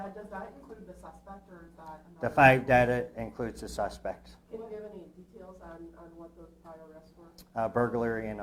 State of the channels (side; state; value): both; identical; correlation 1.00